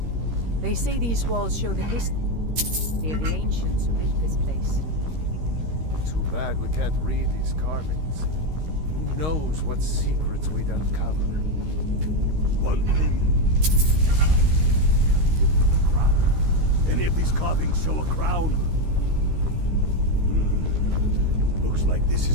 They say these walls show the history of the ancients who built this place. Too bad we can't read these carvings. Who knows what secrets we'd uncover? One thing. The crown. Any of these carvings show a crown? Looks like this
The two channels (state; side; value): late; left; 13 ms